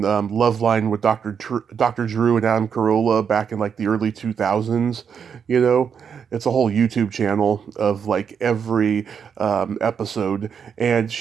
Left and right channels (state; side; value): quieter; left; 7.1 dB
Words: Loveline with Dr. Drew and Adam Carolla back in like the early 2000s. You know, it's a whole YouTube channel of like every episode, and